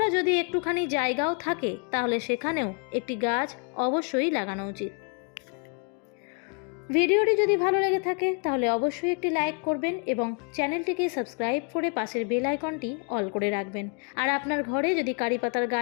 যদি একটুখানি জায়গাও থাকে, তাহলে সেখানেও একটি গাছ অবশ্যই লাগানো উচিত। ভিডিওটি যদি ভালো লেগে থাকে তাহলে অবশ্যই একটি লাইক করবেন এবং চ্যানেলটিকে সাবস্ক্রাইব করে পাশের বেল আইকনটি অল করে রাখবেন। আর আপনার ঘরে যদি কারি পাতার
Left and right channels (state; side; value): quieter; right; 37.8 dB